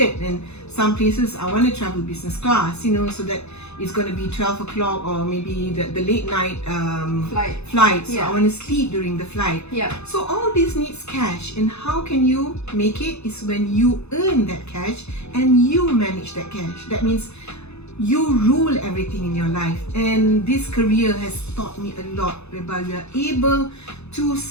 and some places I want to travel business class, you know, so that it's going to be 12 o'clock, or maybe the late night flight. So I want to sleep during the flight. So all this needs cash, and how can you make it is when you earn that cash and you manage that cash. That means you rule everything in your life, and this career has taught me a lot, whereby we are able to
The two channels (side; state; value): right; late; 0.80 ms